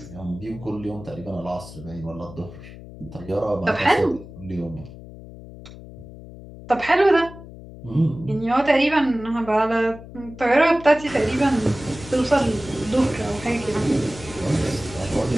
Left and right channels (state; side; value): noise; left; hum, 16 dB below the sound